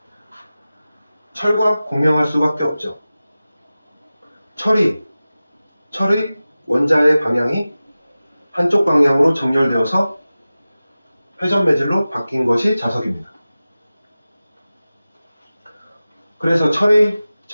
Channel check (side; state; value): both; inverted; correlation -0.96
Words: 철과 공명할 수밖에 없죠. 철의 원자의 방향이 한쪽 방향으로 정렬되어서 회전 매질로 바뀐 것이 자석입니다. 그래서 철의